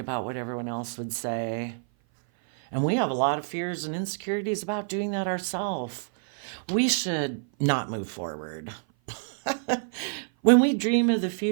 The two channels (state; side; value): silent; left; 56 dB below the other